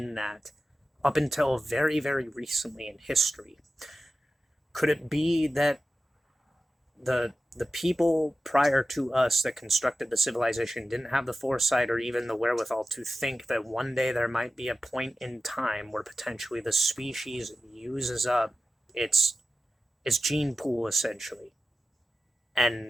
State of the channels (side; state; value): both; normal; correlation 0.93